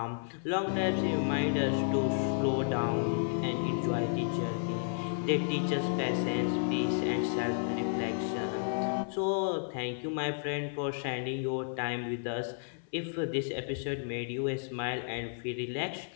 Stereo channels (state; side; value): silent; right; 55 dB below the other